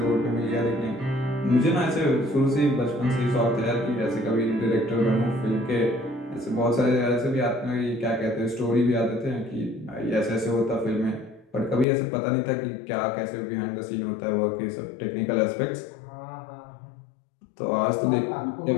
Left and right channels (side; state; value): right; drops out; at 11.9 s